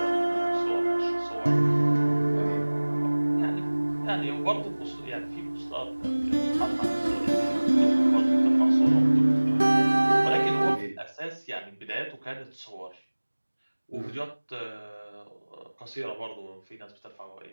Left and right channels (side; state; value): both; inverted; correlation -1.00